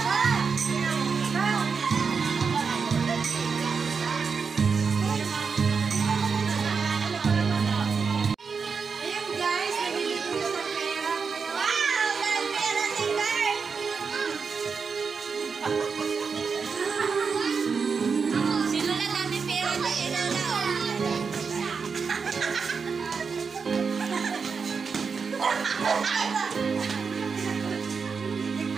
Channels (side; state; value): left; quieter; 5.5 dB